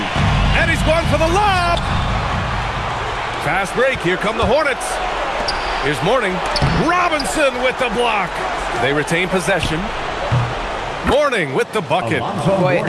And he's going for the lob. Fast break. Here come the Hornets. Here's Mourning. Robinson with the block. They retain possession. Mourning with the bucket. Boy,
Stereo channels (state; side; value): identical; both; correlation 1.00